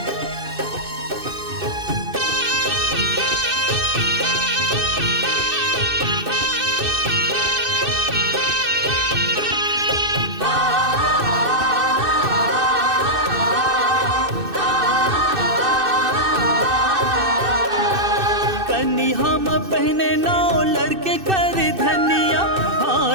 कन्नी हम पहने नाव लड़के कर धनिया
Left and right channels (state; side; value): late; left; 2.6 ms